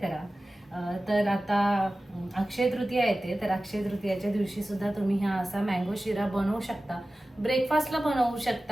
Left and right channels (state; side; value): normal; both; correlation 0.96